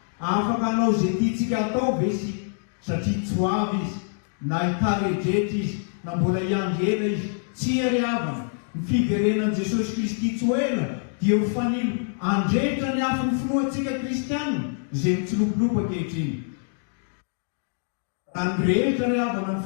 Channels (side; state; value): right; silent; digital silence